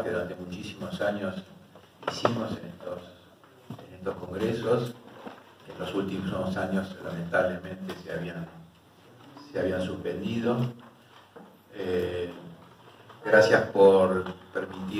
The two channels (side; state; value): both; identical; correlation 1.00